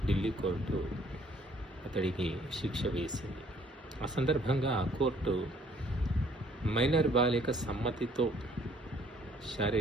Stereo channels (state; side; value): normal; both; correlation 0.60